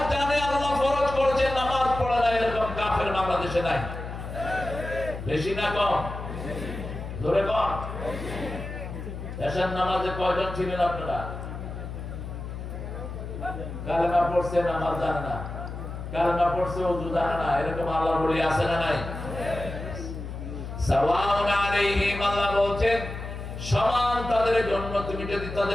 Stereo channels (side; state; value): left; noise; hum, 8 dB below the sound